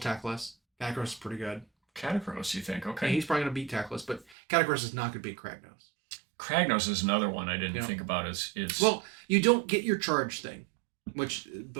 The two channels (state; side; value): drops out; left; at 4.4 s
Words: Catacross is pretty good. Catacross, you think? Okay. Yeah, he's probably gonna beat Teclis, but Catacross is not gonna beat Kragnos. Kragnos is another one I didn't think about as well, you don't get your charge thing, which